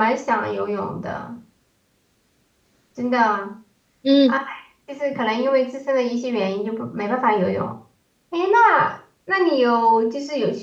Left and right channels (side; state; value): both; identical; correlation 1.00